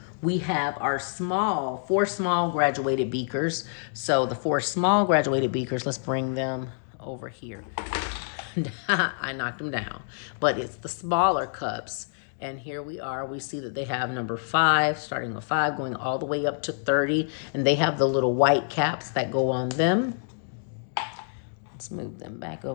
We have our 4 small graduated beakers. So the 4 small graduated beakers, let's bring them over here. I knocked them down, but it's the smaller cups. And here we are, we see that they have number 5, starting with 5, going all the way up to 30. And they have the little white caps that go on them. Let's move them back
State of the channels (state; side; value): silent; right; digital silence